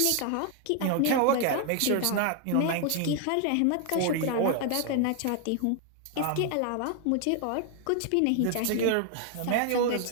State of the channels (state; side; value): different; both; correlation 0.00